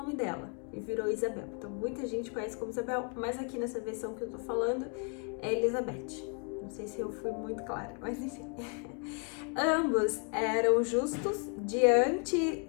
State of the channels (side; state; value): right; quieter; 39.1 dB